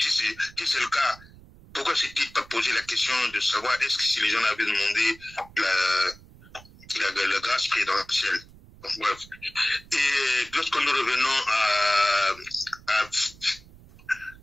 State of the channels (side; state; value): right; noise; rumble, 22 dB below the sound